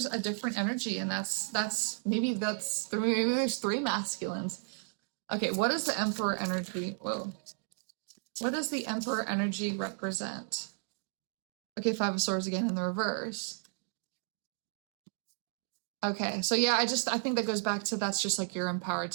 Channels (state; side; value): silent; left; 55 dB below the other